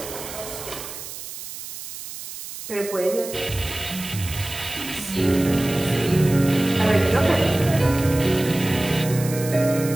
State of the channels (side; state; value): right; noise; hiss, 11 dB below the sound